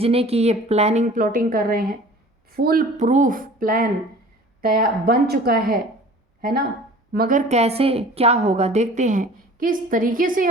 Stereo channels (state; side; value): normal; both; correlation 0.45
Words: की ये प्लानिंग प्लॉटिंग कर रहे हैं। फुल प्रूफ प्लान तैयार बन चुका है ना। मगर कैसे, क्या होगा, देखते हैं किस तरीके से